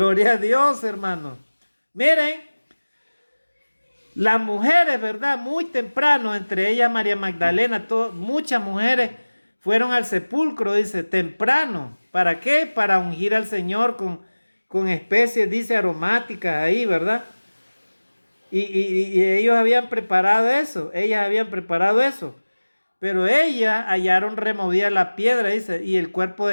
a Dios, hermanos. Miren, las mujeres, ¿verdad? Muy temprano, entre ellas María Magdalena, muchas mujeres fueron al sepulcro, dice, temprano. ¿Para qué? Para ungir al Señor con especies, dice, aromáticas ahí, ¿verdad? Y ellos habían preparado eso, ellas habían preparado eso. Pero ellas hallaron removida la piedra, dice, y el cuerpo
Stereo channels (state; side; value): inverted; both; correlation -1.00